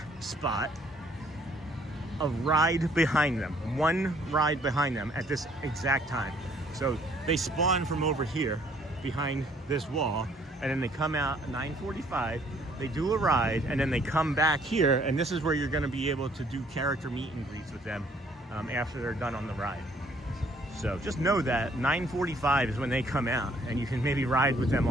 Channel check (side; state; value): both; normal; correlation 0.62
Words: spot, a ride behind them, one ride behind them at this exact time. So they spawn from over here behind this wall, and then they come out at 9:45, they do a ride, and then they come back here, and this is where you're going to be able to do character meet and greets with them after they're done on the ride. So just know that 9:45 is when they come out, and you can maybe ride with them